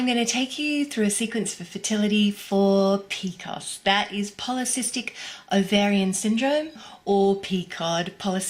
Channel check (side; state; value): both; identical; correlation 1.00